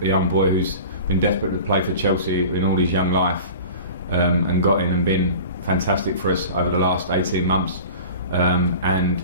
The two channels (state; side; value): inverted; both; correlation -0.38